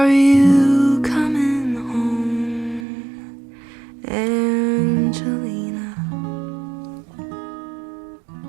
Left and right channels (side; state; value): left; drops out; at 2.9 s